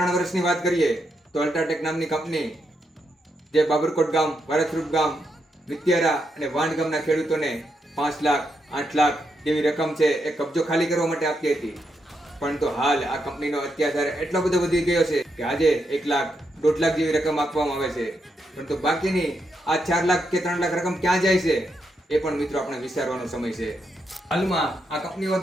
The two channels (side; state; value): both; normal; correlation 0.82